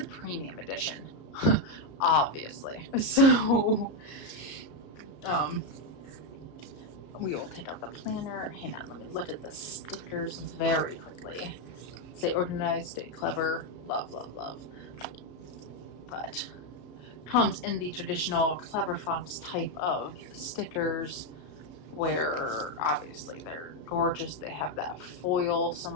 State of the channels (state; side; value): late; right; 34 ms